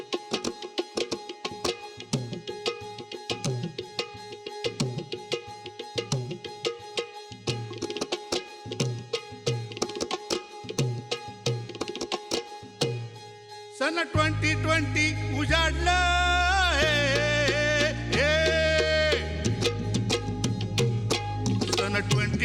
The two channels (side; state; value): both; identical; correlation 1.00